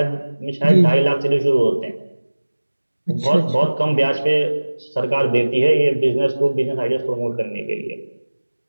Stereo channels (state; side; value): inverted; both; correlation -1.00